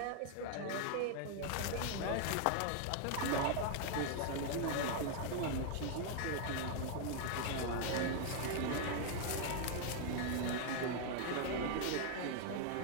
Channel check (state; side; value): different; both; correlation 0.00